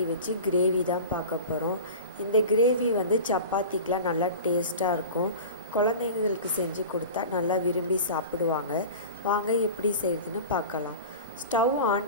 வச்சு கிரேவி தான் பார்க்க போகிறோம். இந்த கிரேவி சப்பாத்திக்கெலாம் நல்லா டேஸ்ட்டாக இருக்கும். குழந்தைங்களுக்கு செஞ்சு கொடுத்தா நல்லா விரும்பி சாப்பிடுவாங்க. வாங்க எப்படி செய்கிறதுன்னு பார்க்கலாம். ஸ்டவ்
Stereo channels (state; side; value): inverted; both; correlation -0.34